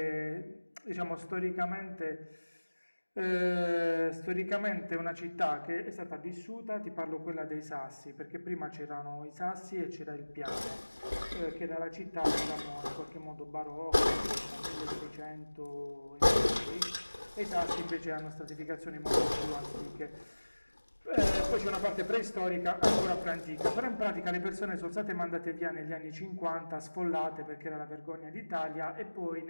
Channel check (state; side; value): inverted; both; correlation -1.00